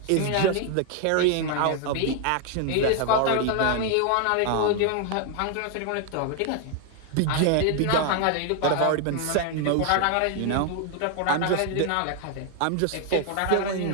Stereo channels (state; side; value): different; both; correlation 0.00